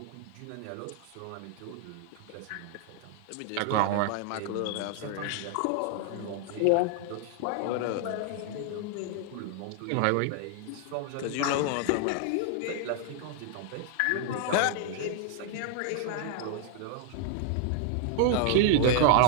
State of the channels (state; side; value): different; both; correlation 0.00